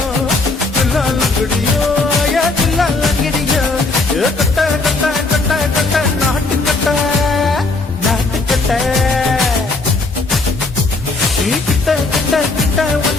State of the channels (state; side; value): quieter; right; 3.5 dB